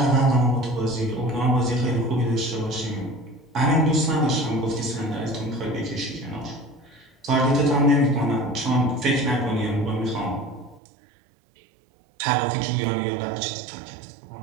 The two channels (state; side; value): drops out; left; at 10.8 s